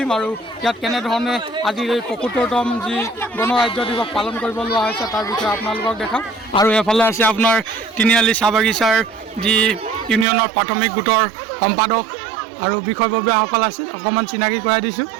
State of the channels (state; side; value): drops out; left; at 10.2 s